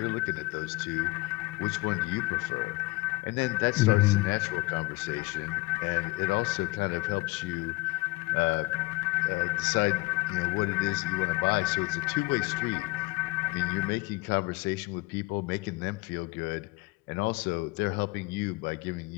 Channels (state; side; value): quieter; right; 21.8 dB